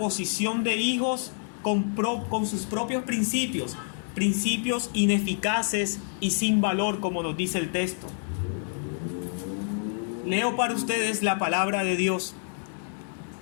de hijos con sus propios principios ineficaces y sin valor, como nos dice el texto. Leo para ustedes la palabra de Dios.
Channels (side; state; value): right; silent; digital silence